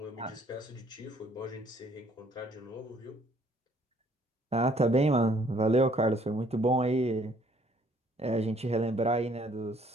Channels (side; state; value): both; normal; correlation 0.62